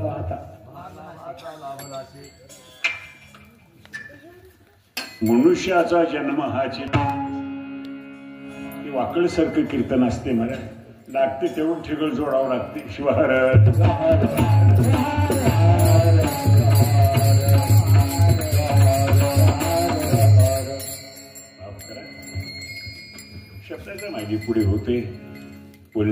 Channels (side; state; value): both; identical; correlation 1.00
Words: मनुष्याचा जन्म हा वाकळसारखं कीर्तन असते मला लागते तेवढं ठिगळ जोडावं लागते. शिवार शब्दाच्या मागे पुढे होते,